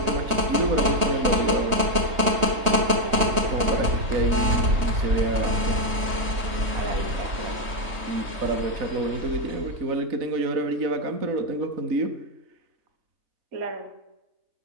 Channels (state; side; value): late; left; 3.2 ms